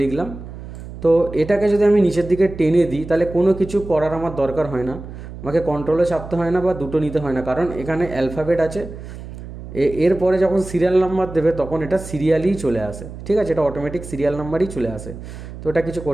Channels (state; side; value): noise; right; hum, 12 dB below the sound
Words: লিখলাম। তো এটাকে যদি আমি নিচের দিকে টেনে দিই তাহলে কোনো কিছু করার আমার দরকার হয় না, আমাকে কন্ট্রোলে চাপতে হয় না বা দুটো নিতে হয় না, কারণ এখানে অ্যালফাবেট আছে। এরপরে যখন সিরিয়াল নাম্বার দেবে তখন এটা সিরিয়ালই চলে আসে, ঠিক আছে, এটা অটোমেটিক সিরিয়াল নাম্বারই চলে আসে, তো এটা কিছু